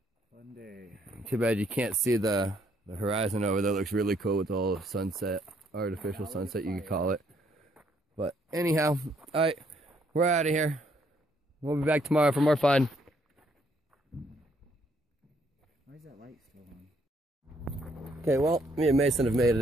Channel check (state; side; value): normal; both; correlation 0.69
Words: Fun day. Too bad you can't see the horizon over there. Looks really cool with all the sunset, artificial sunset you could call it. But anyhow, alright, we're out of here. We'll be back tomorrow for more fun. Okay, well, me and Mason have made